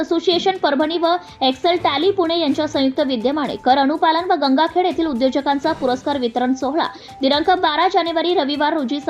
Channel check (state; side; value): identical; both; correlation 1.00